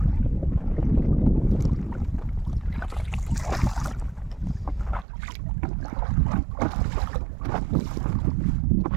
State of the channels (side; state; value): left; drops out; at 5.1 s